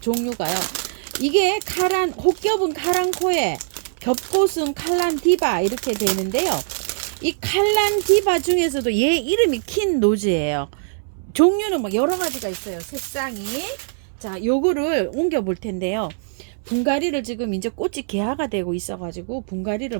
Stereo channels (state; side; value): silent; left; 64 dB below the other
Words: 이게 혹겹은 카랑코에, 겹꽃은 칼란디바 이렇게 되는데요. 이 칼란디바 중에서도 얘 이름이 킨노즈예요. 종류는 막 여러 가지가 있어요. 색상이. 자, 요거를 옮겨 볼 텐데요. 분갈이를 지금 이제 꽃이 개화가 되고 있어가지고 분갈이를